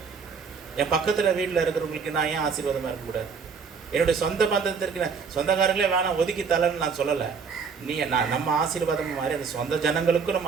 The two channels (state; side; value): quieter; left; 5.6 dB